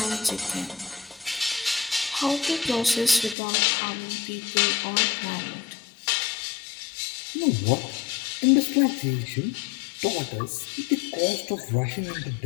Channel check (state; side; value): drops out; right; at 3.4 s